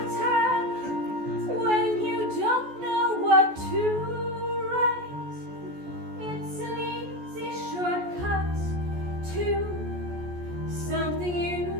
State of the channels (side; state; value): left; late; 14 ms